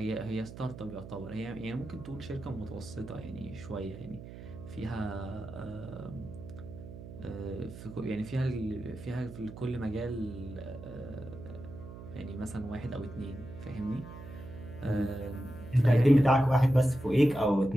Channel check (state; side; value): noise; right; hum, 13 dB below the sound